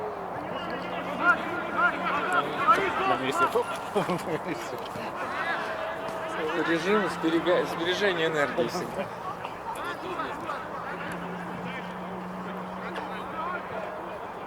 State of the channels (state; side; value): identical; both; correlation 1.00